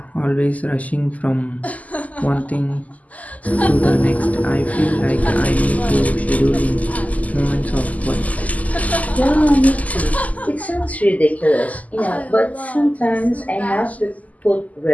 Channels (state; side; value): late; right; 0.075 ms